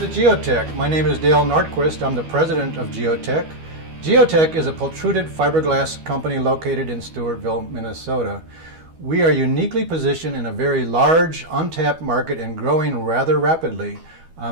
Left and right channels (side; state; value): left; late; 12 ms